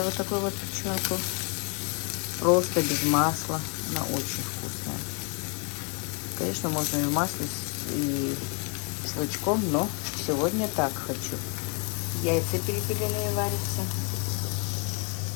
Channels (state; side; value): quieter; right; 36.0 dB